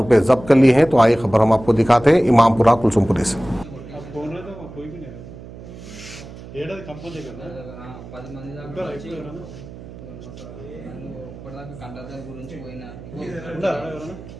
जब्त कर लिए हैं। तो आइए खबर हम आपको दिखाते हैं इमामपुरा कुलसुमपुरे से।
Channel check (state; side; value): noise; right; hum, 15 dB below the sound